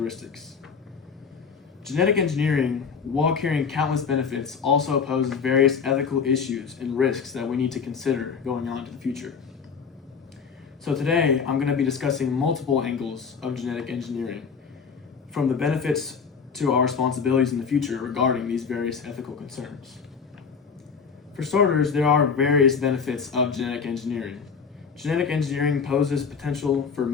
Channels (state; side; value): quieter; right; 5.9 dB